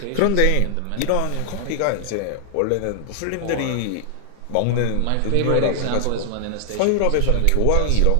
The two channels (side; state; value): both; different; correlation 0.00